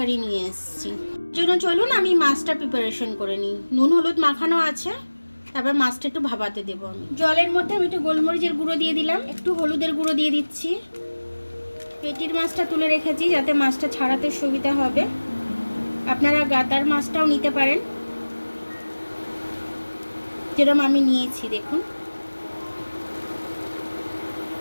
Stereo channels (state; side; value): inverted; both; correlation -1.00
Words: নিয়ে এসেছি। জন্য চলুন আমি মাছটা প্রিপারেশন করে নিই। নুন হলুদ মাখানো আছে, তারপর মাছটা একটু ভাপাতে দেবো আমি। জলের মধ্যে আমি একটু গোলমরিচের গুঁড়ো দিয়ে দিলাম, একটু হলুদের গুঁড়ো দিয়ে দিচ্ছি। পেটির মাছটা তুলে রেখেছি যাতে মাছটা ছাড়াতে সুবিধা হবে। আপনারা গাদার মাছটাও নিতে পারেন, যেরকম আমি নিয়েছি দেখুন।